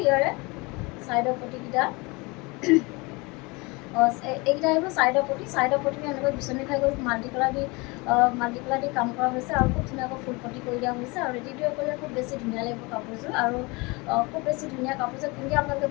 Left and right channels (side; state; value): right; quieter; 26.1 dB